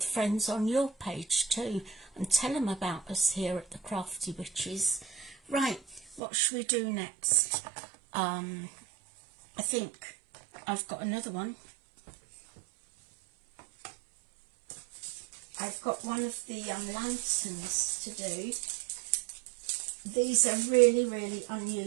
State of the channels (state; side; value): drops out; left; at 6.2 s